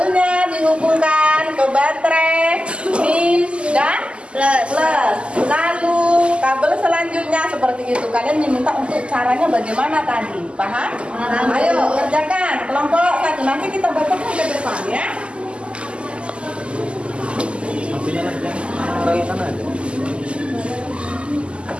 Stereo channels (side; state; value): left; late; 0.053 ms